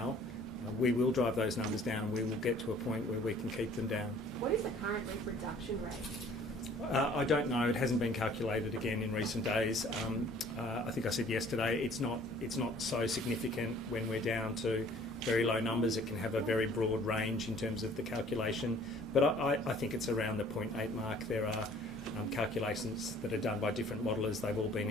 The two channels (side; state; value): both; normal; correlation 0.54